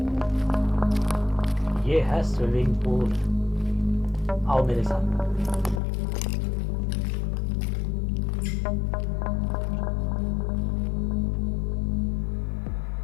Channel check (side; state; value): right; drops out; at 5.8 s